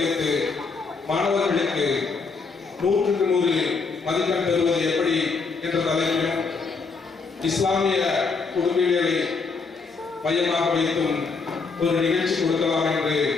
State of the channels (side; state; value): right; quieter; 4.6 dB